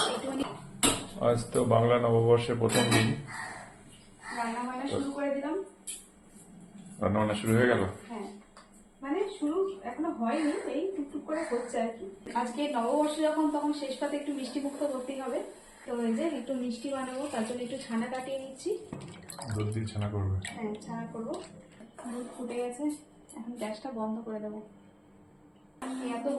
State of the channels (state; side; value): identical; both; correlation 1.00